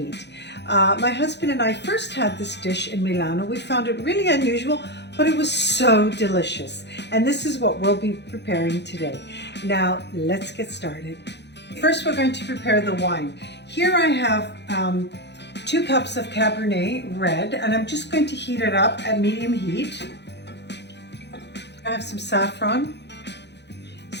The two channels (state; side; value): late; right; 0.50 ms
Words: My husband and I first had this dish in Milano. We found it really unusual, but it was so delicious, and this is what we'll be preparing today. Now let's get started. First we're going to prepare the wine. Here I have 2 cups of Cabernet red, and I'm just going to heat it up at medium heat. I have some saffron,